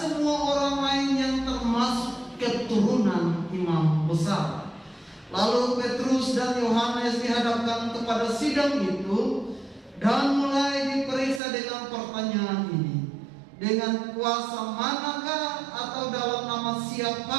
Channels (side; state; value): left; drops out; at 11.4 s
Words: orang lain yang termasuk keturunan imam besar. Lalu Petrus dan Yohanes dihadapkan kepada sidang itu dan mulai diperiksa dengan pertanyaan ini. Dengan kuasa manakah atau dalam nama